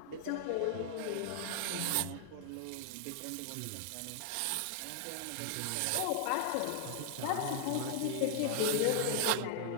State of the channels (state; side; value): different; both; correlation 0.00